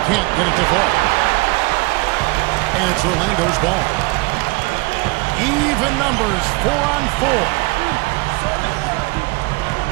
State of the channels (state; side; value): quieter; left; 25.9 dB